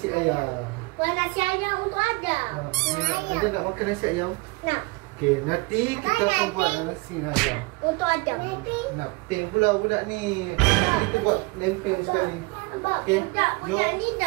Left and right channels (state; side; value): quieter; left; 26.8 dB